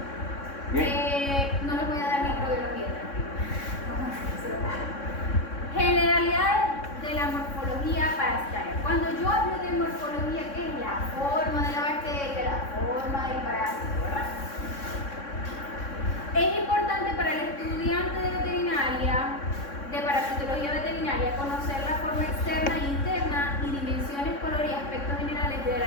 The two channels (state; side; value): late; right; 3.6 ms